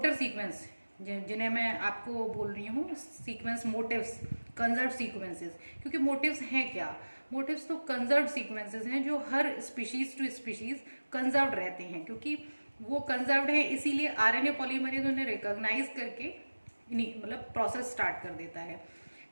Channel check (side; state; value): both; inverted; correlation -1.00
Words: सीक्वेंस जिन्हें मैं आपको बोल रही हूँ सीक्वेंस मोटिव्स, कंजर्व सीक्वेंसेस। क्योंकि मोटिव्स हैं क्या, मोटिव्स तो कंजर्व सीक्वेंसेस हैं जो हर स्पीशीज टू स्पीशीज कंजर्व रहते हैं। क्योंकि वो कंजर्व्ड है इसीलिए आरएनए पॉलीमरेज उन्हें रिकॉग्नाइज करके मतलब प्रोसेस स्टार्ट कर देता है।